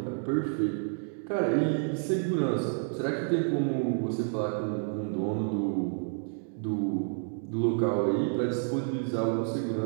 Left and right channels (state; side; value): silent; left; 58 dB below the other